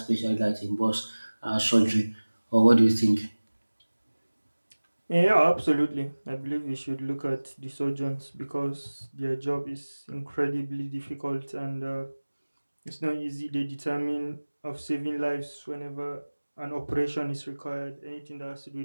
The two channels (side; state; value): both; inverted; correlation -1.00